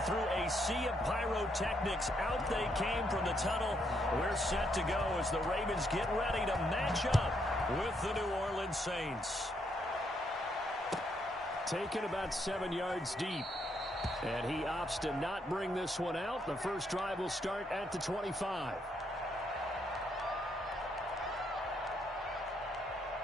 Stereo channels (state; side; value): normal; both; correlation 0.75